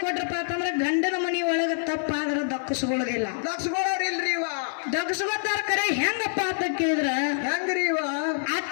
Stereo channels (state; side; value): silent; right; digital silence